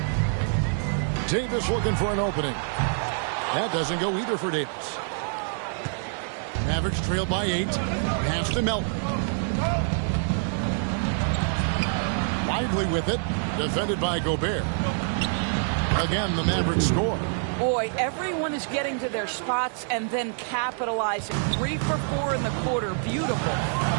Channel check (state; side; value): silent; left; 61 dB below the other